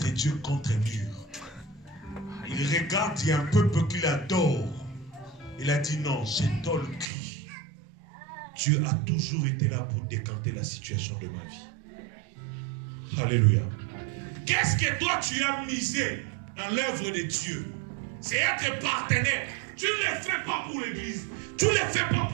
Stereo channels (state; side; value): drops out; left; at 7.1 s